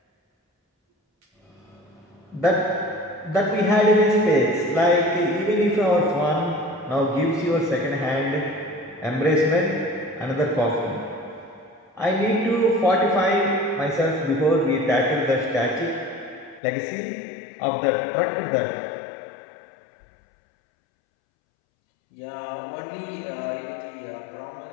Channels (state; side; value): drops out; right; at 16.6 s